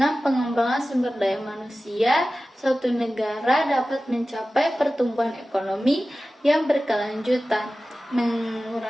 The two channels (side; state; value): both; normal; correlation 0.96